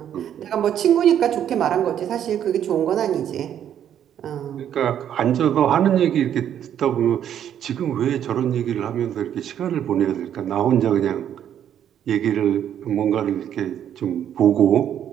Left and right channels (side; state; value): left; quieter; 9.9 dB